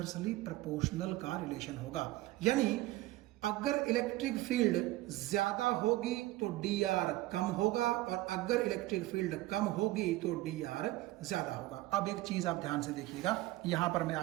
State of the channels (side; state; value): left; quieter; 17.7 dB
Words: प्रोपोर्शनल का रिलेशन होगा। यानी अगर इलेक्ट्रिक फील्ड ज्यादा होगी तो dr कम होगा, और अगर इलेक्ट्रिक फील्ड कम होगी तो dr ज्यादा होगा। अब एक चीज आप ध्यान से देखिएगा, यहां पर मैं